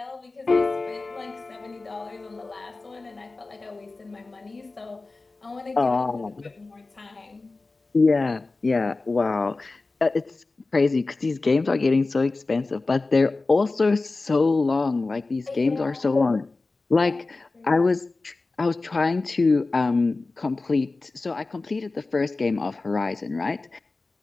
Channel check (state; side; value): quieter; right; 3.5 dB